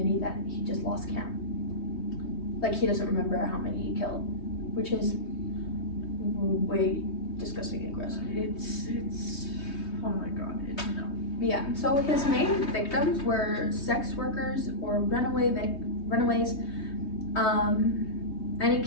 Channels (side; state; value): right; late; 3.2 ms